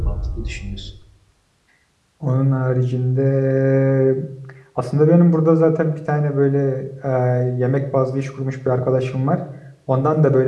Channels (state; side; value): identical; both; correlation 1.00